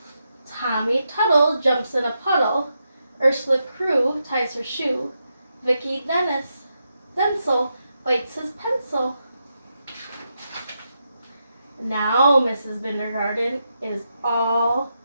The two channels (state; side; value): inverted; both; correlation -0.84